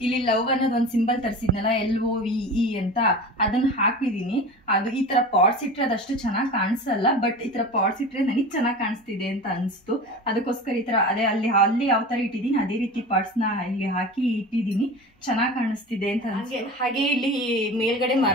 ಇಲ್ಲಿ ಲವ್ ಅನ್ನೋದು ಒಂದು ಸಿಂಬಲ್ ತರಿಸಿದ್ನಲ್ಲ LOVE ಅಂತ, ಅದನ್ನ ಹಾಕಿದೀನಿ. ಅದು ಈ ತರ ಪಾಟ್ಸ್ ಇಟ್ರೆ ಅದಷ್ಟು ಚೆನ್ನಾಗಿ ಕಾಣಿಸಲ್ಲ, ಬಟ್ ಈ ತರ ಪಾಟ್ಸ್ ಇಟ್ರೆ ನನಗೆ ಚೆನ್ನಾಗಿ ಕಾಣಿಸ್ತಿದೆ ಅಂತ ಅನ್ಸ್ತು. ಅದಕ್ಕೋಸ್ಕರ ಈ ತರ ಅದೇ ಅಲ್ಲಿ ಯಾವ ತರ ಇಟ್ಟಿದ್ದೀನಿ ಅದೇ ರೀತಿ ಪಾಟ್ಸ್ ನ ಇಲ್ಲಿ ಹಾಕಿ ಇಟ್ಟಿದ್ದೀನಿ, ಚೆನ್ನಾಗಿ ಕಾಣಿಸ್ತಿದೆ ಅಂತ. ಹಾಗೆ ಇಲ್ಲಿ ಮೇಲ್ಗಡೆ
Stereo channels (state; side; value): normal; both; correlation 0.33